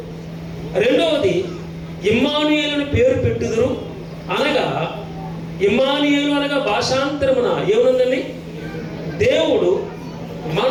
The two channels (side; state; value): both; identical; correlation 1.00